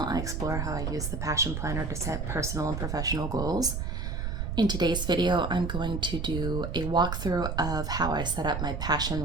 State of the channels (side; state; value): right; noise; rumble, 3 dB below the sound